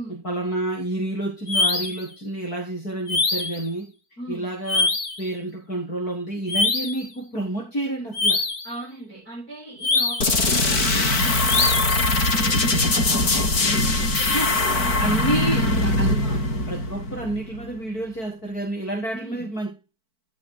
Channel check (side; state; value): right; late; 4.5 ms